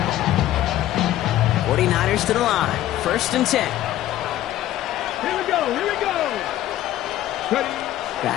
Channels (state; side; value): quieter; right; 13.6 dB